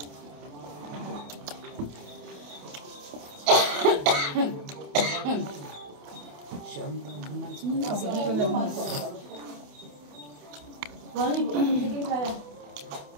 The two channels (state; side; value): late; left; 28 ms